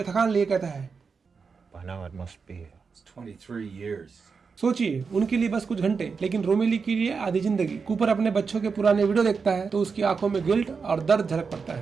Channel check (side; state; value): left; quieter; 5.3 dB